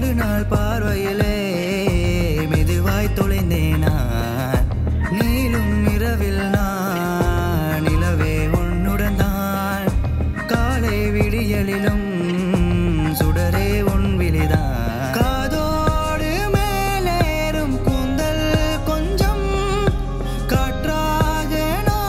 பார்வையிலே மெதுவாய் தொலைந்தேனாய் நீளும் இரவில் நான் நிலவே உன்னுடன் தான் காலை விடியலிலும் சுடரே உன் விழிதான் காதோடு மேலேறும் கூந்தல் கொஞ்சம் காற்றாக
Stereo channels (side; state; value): both; identical; correlation 1.00